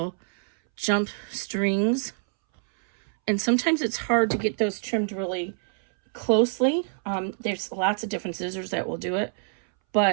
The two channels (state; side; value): silent; left; 61 dB below the other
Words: jump strings, and sometimes it's hard to get those trimmed really closely. There's lots of different scissors that will do it.